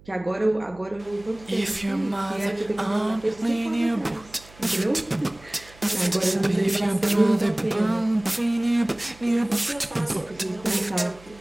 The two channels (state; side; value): noise; right; hum, 24 dB below the sound